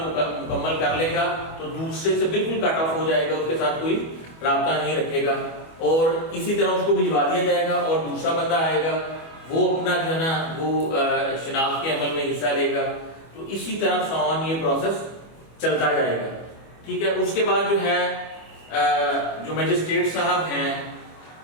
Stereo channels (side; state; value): right; late; 25 ms